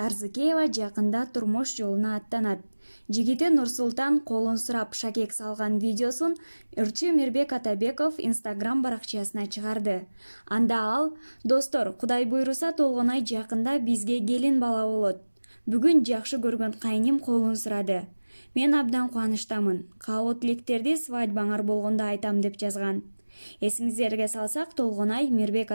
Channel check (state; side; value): inverted; both; correlation -1.00